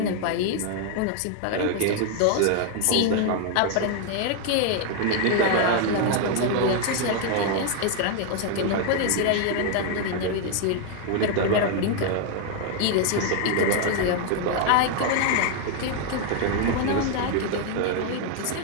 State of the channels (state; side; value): different; both; correlation 0.00